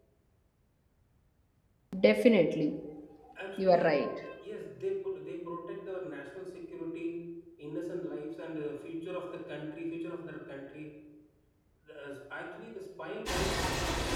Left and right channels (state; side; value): identical; both; correlation 1.00